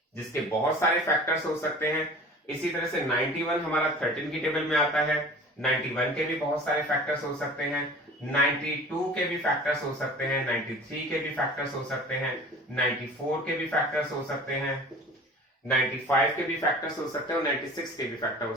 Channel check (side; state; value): both; normal; correlation 0.43